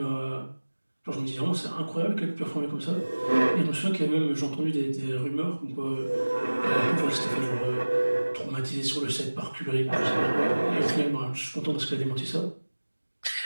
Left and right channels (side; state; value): both; inverted; correlation -1.00